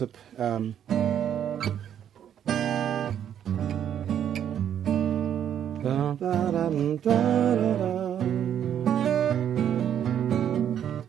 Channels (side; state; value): left; quieter; 9.6 dB